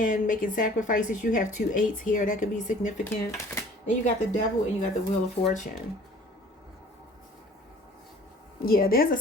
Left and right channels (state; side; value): normal; both; correlation 0.50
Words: making sacrifices. You have 2 8s here. That could be significant. Then you got the Devil and you got the Wheel of Fortune. Yeah, there's a